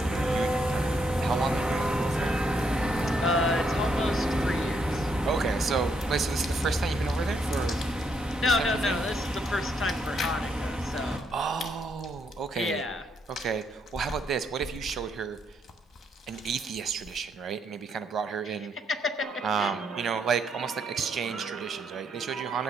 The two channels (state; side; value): normal; both; correlation 0.75